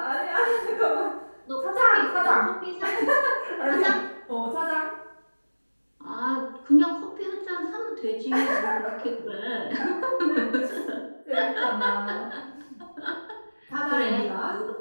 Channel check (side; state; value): both; inverted; correlation -1.00